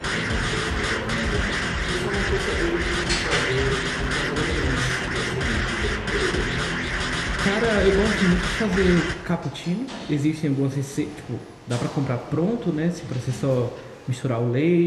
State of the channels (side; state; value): both; identical; correlation 1.00